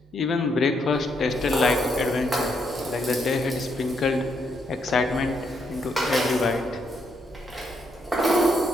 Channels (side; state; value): both; normal; correlation 0.76